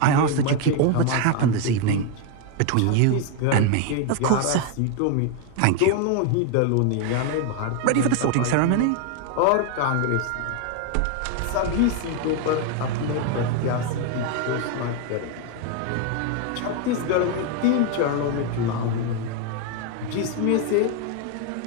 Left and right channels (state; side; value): different; both; correlation 0.01